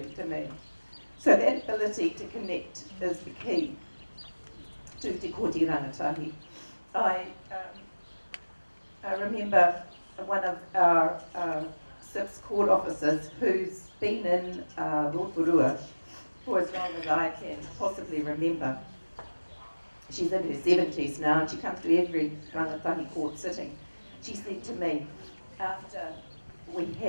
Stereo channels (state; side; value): inverted; both; correlation -1.00